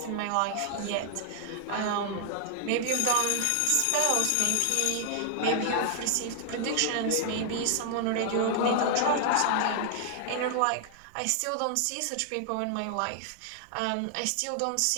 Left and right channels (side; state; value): both; different; correlation 0.00